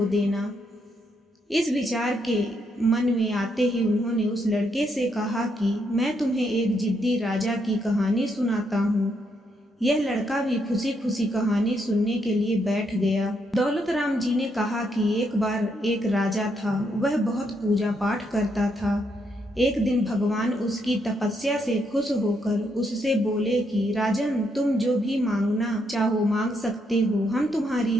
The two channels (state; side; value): normal; both; correlation 0.77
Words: देना। इस विचार के मन में आते ही उन्होंने उस लड़के से कहा कि मैं तुम्हें एक जिद्दी राजा की कहानी सुनाता हूँ। यह लड़का भी खुशी खुशी कहानी सुनने के लिए बैठ गया। दौलत राम जी ने कहा कि एक बार एक राजा था, वह बहुत पूजा पाठ करता था। एक दिन भगवान उसकी तपस्या से खुश होकर उससे बोले कि राजन, तुम जो भी मांगना चाहो मांग सकते हो, हम तुम्हारी